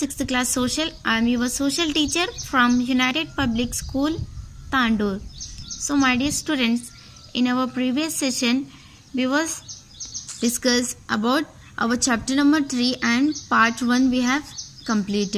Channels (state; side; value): identical; both; correlation 1.00